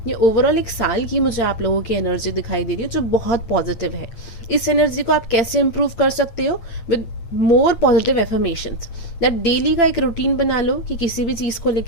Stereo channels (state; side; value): late; right; 8.9 ms